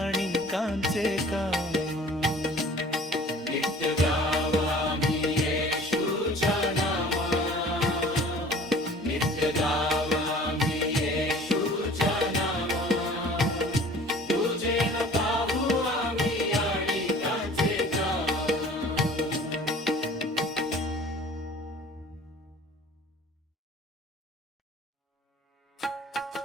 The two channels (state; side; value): normal; both; correlation 0.47